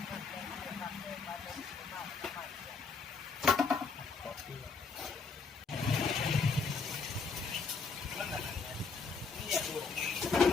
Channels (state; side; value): quieter; right; 4.8 dB